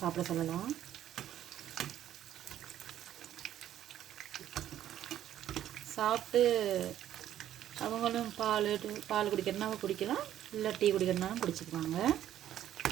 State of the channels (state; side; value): quieter; left; 11.6 dB